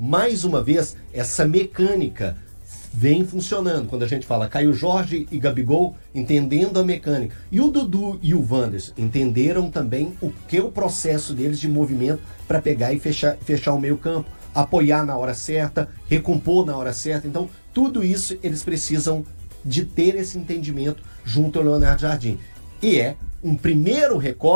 uma vez, essa mecânica vem funcionando. Quando a gente fala Caio Jorge e Gabigol entendendo a mecânica. E o Dudu e o Wanderson entenderam também o que é o processo deles de movimento para pegar e fechar o meio campo, apoiar na hora certa, recompor na hora certa. Então, tudo isso eles precisam de ter esse entendimento junto ao Leonardo Jardim. E é um primeiro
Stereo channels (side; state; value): both; inverted; correlation -1.00